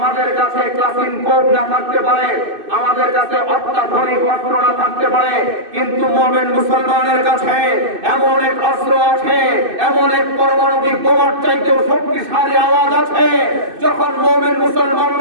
কাছে ক্লাসিনকোভ না থাকতে পারে, আমাদের কাছে অত্যাধুনিক অস্ত্র না থাকতে পারে, কিন্তু মুমিন মুসলমানের কাছে এমন এক অস্ত্র আছে, এমন এক পারমাণবিক বোমার চাইতেও শক্তিশালী আওয়াজ আছে যখন মুমিন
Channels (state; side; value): late; left; 2.6 ms